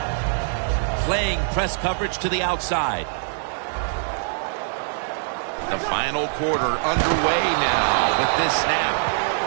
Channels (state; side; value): silent; left; digital silence